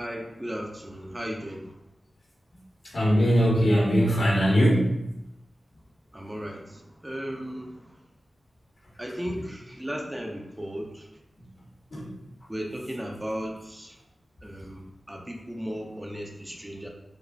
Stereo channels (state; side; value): normal; both; correlation 0.93